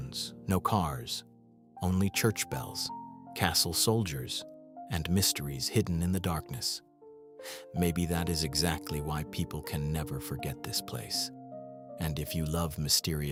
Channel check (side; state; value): both; identical; correlation 1.00